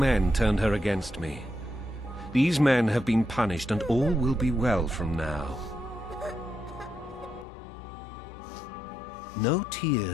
turned her against me. These men have been punished, and all will be well from now. No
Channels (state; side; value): drops out; right; at 7.5 s